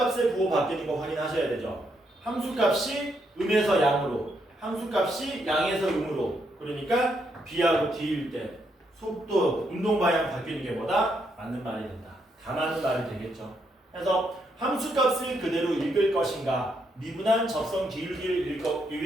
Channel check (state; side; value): normal; both; correlation 0.77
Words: 부호 바뀌는 거 확인하셔야 되죠. 함수값이 음에서 양으로, 함수값이 양에서 음으로. 그러니까 B하고 D일 때 속도, 운동 방향 바뀌는 게 뭐다? 맞는 말이 된다. 다 맞는 말이 되겠죠. 그래서 함수값을 그대로 읽을 것인가, 미분한 접선 기울기를